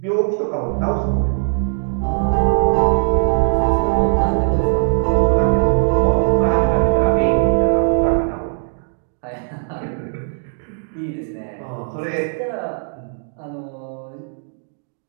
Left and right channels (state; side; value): silent; left; digital silence